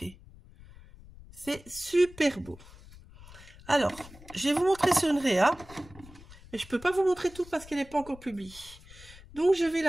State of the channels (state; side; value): noise; left; rumble, 20 dB below the sound